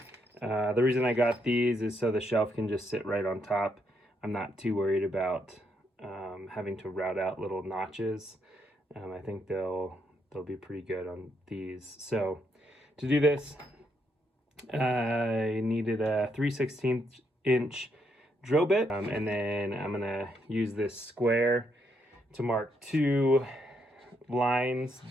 The reason I got these is so the shelf can just sit right on top. I'm not too worried about having to route out little notches. I think they'll be pretty good on these. So to do this, I needed a 3/16 inch drill bit, and then I'm gonna use this square to mark 2 lines,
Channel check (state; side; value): normal; both; correlation 0.76